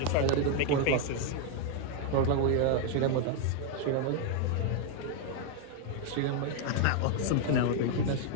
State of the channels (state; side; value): different; both; correlation 0.00